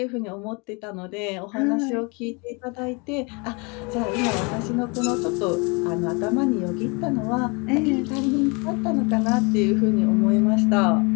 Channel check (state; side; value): quieter; right; 30.4 dB